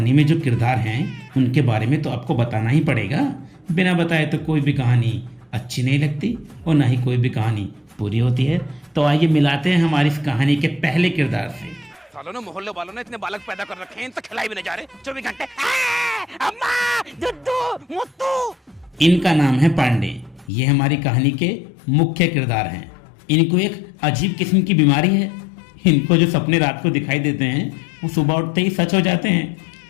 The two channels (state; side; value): drops out; right; at 20.5 s